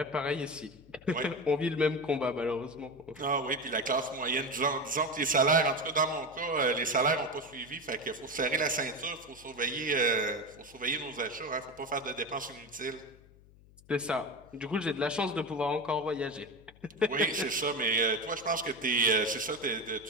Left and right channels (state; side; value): noise; left; hum, 25 dB below the sound